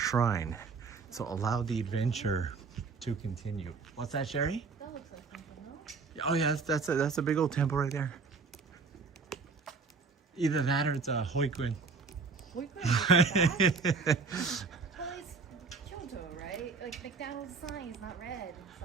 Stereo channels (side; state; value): left; quieter; 4.7 dB